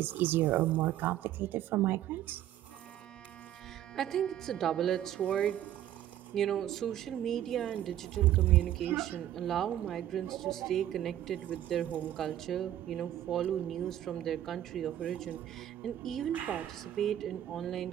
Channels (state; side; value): quieter; left; 12.0 dB